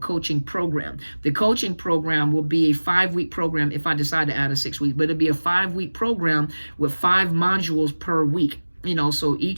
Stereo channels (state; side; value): inverted; both; correlation -1.00